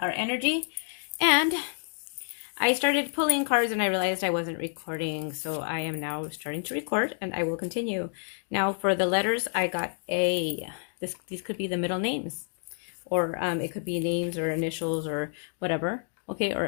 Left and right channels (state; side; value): silent; right; digital silence